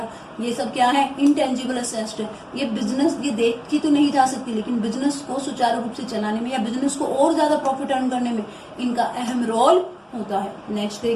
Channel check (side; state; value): both; identical; correlation 1.00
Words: ये सब क्या है, इंटेंजिबल एसेट है। ये बिजनेस ये देखी तो नहीं जा सकती, लेकिन बिजनेस को सुचारू रूप से चलाने में या बिजनेस को और ज्यादा प्रॉफिट अर्न करने में इनका अहम रोल होता है। नेक्स्ट